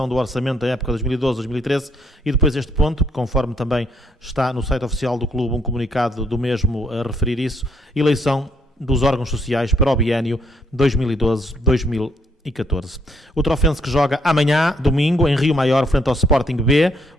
do orçamento da época 2012-2013. E depois este ponto, que conforme também está no site oficial do clube, um comunicado do mesmo a referir isso, eleição dos órgãos sociais para o biênio 2012-2014. O Trofense que joga amanhã, domingo, em Rio Maior, frente ao Sporting B,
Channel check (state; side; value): normal; both; correlation 0.71